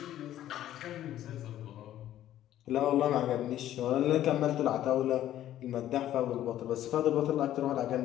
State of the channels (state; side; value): quieter; right; 12.5 dB